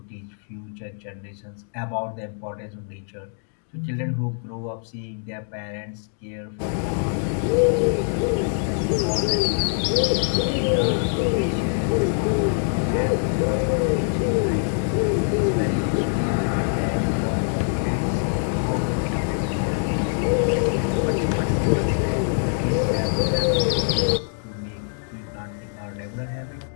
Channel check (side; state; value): right; silent; digital silence